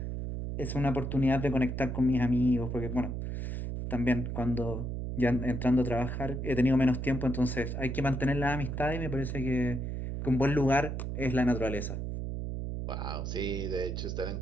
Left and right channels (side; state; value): right; noise; hum, 4 dB below the sound